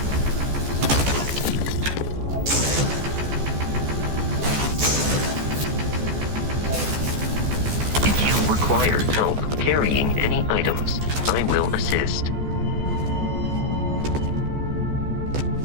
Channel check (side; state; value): left; late; 14 ms